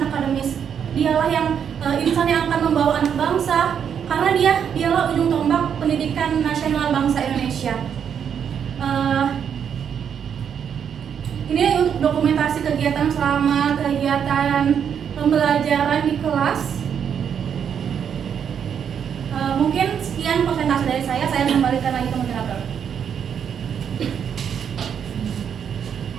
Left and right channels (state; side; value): quieter; left; 7.9 dB